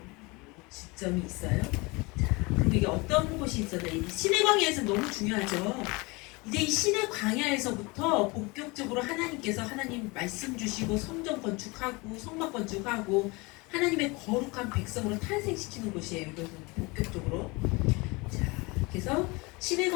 지점이 있어요. 자, 그리고 이게 어떤 곳이 있었나? 이 신의 광야에서 너무 중요하죠. 이제 이 신의 광야에서부터 본격적으로 하나님께서 하나님 말씀 주시고 성전 건축하고 성막 건축하고 하나님의 거룩한 백성으로 탄생시키는 곳이에요. 이것은 본격적으로. 자, 그래서 신의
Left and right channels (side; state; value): right; quieter; 25.7 dB